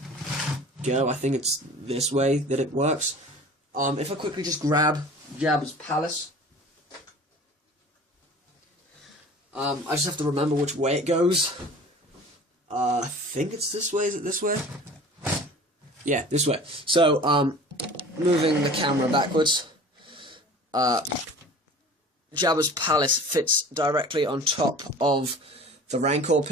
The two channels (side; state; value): both; normal; correlation 0.42